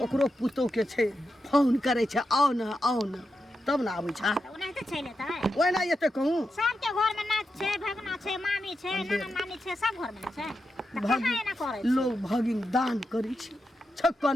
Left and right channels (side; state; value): both; normal; correlation 0.87